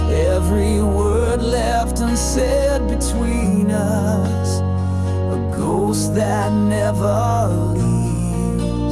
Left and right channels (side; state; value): both; identical; correlation 1.00